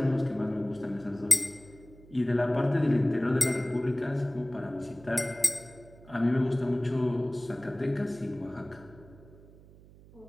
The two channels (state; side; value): noise; right; hum, 22 dB below the sound